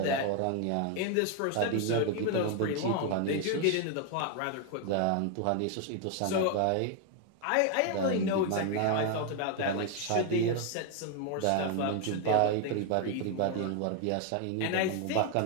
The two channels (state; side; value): different; both; correlation 0.01